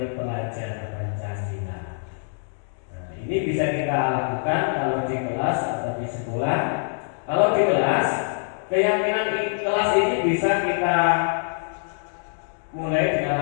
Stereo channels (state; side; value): silent; right; digital silence